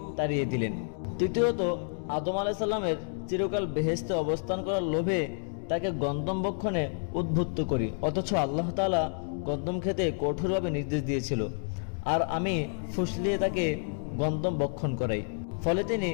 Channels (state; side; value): silent; right; digital silence